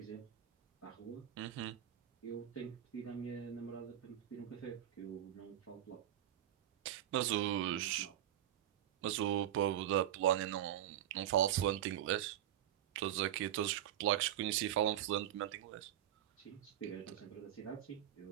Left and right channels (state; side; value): quieter; left; 11.6 dB